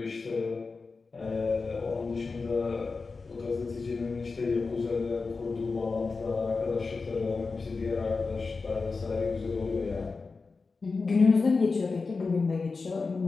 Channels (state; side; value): quieter; right; 4.3 dB